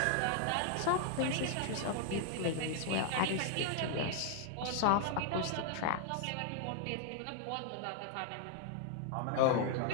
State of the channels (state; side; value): different; both; correlation 0.00